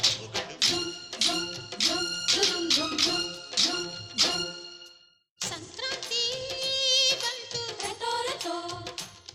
ಹಬ್ಬುಗಳು ಸಂಕ್ರಾಂತಿ ಬಂತು ರಟೋ ರಟೋ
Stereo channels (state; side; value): identical; both; correlation 1.00